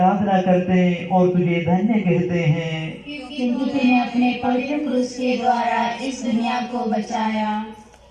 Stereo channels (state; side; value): identical; both; correlation 1.00